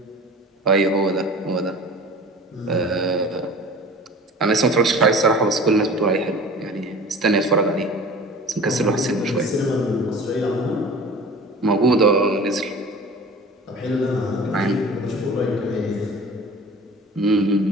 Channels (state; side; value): normal; both; correlation 0.41